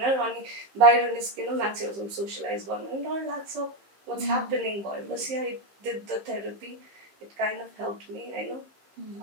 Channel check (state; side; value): late; left; 15 ms